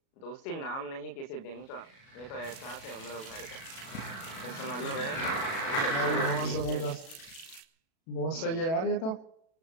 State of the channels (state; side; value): late; right; 37 ms